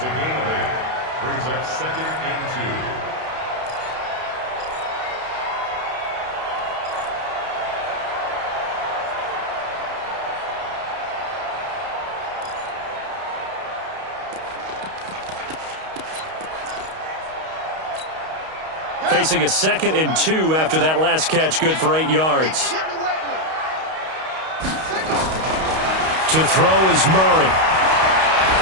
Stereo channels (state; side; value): late; left; 32 ms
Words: a gain of 8. Brings up 2nd and 2. Facing a 2nd and 2 after that last catch, good for 8 yards. To throw is Murray.